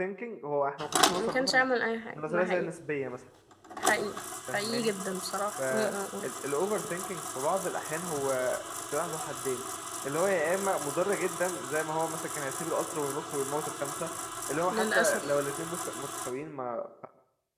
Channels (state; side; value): identical; both; correlation 1.00